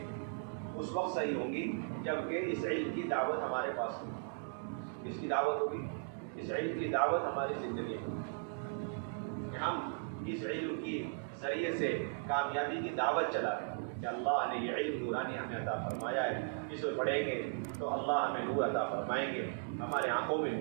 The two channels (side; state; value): left; silent; digital silence